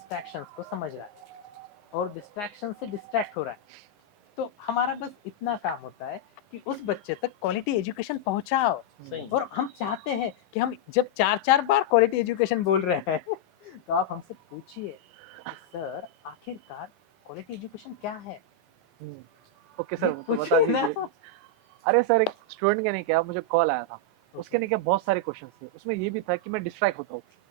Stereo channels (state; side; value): normal; both; correlation -0.02